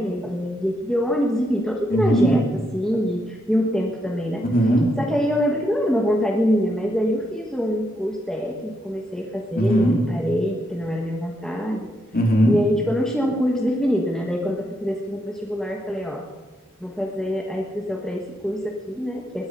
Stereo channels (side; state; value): both; normal; correlation 0.79